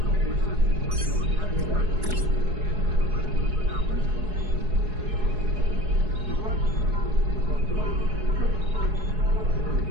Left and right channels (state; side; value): late; left; 4.7 ms